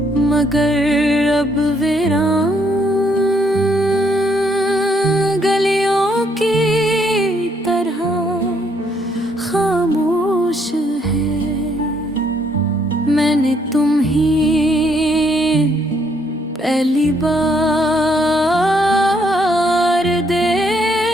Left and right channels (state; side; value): normal; both; correlation 0.70